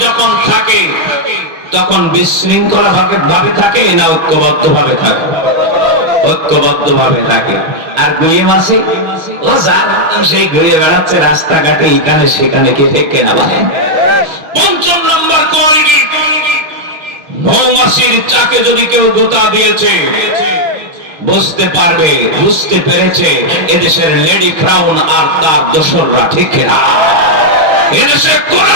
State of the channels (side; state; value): left; late; 6.3 ms